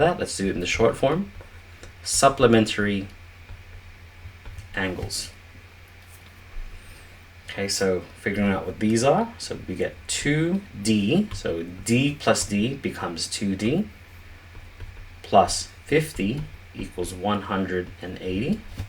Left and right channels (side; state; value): both; identical; correlation 1.00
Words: let's do it in the short form. Supplementary angles. Okay, so figuring out what these are. So we get 2D. So D plus D becomes 2D. Plus 50 equals 180.